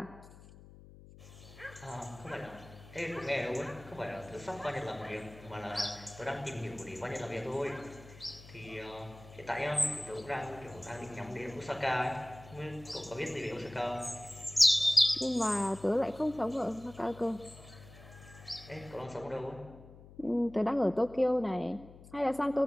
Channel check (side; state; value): left; noise; hum, 19 dB below the sound